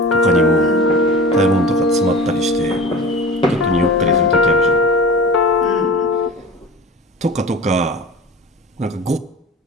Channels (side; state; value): both; normal; correlation 0.35